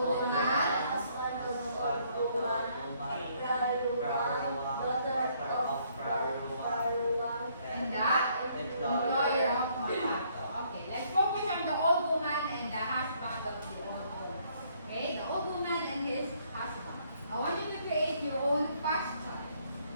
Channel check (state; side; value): inverted; both; correlation -0.67